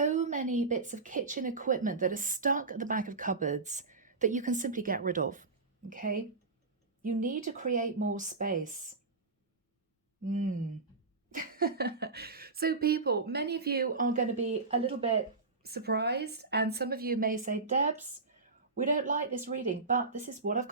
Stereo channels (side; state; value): left; quieter; 3.9 dB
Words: many bits of kitchen equipment that are stuck at the back of cupboards that you can simply get rid of, okay? You need to create more space. So people, many of you are going to be a little bit surprised, and some of you may say, Debs, we don't like this reading, but this is what I've